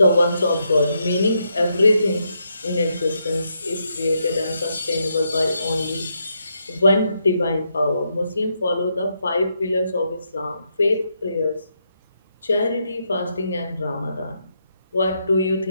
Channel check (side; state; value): both; inverted; correlation -0.80